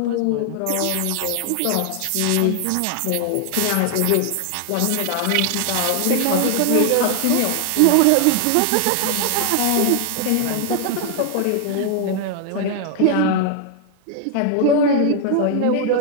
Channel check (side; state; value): both; different; correlation 0.00